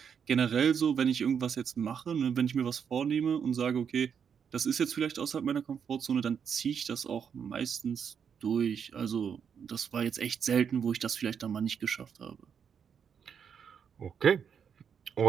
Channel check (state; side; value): quieter; left; 7.3 dB